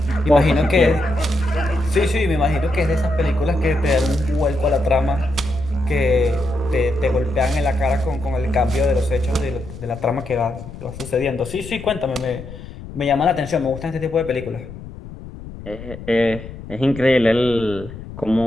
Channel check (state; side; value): noise; left; rumble, 13 dB below the sound